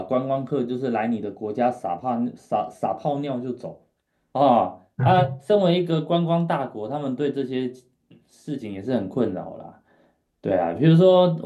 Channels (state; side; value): identical; both; correlation 1.00